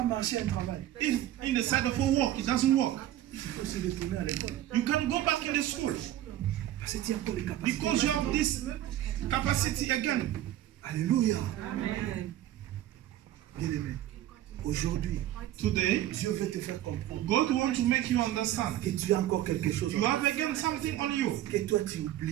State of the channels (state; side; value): quieter; left; 13.1 dB